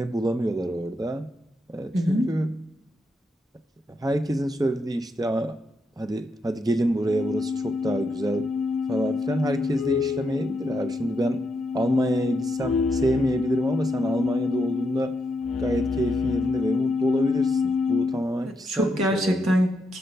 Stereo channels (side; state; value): both; normal; correlation 0.81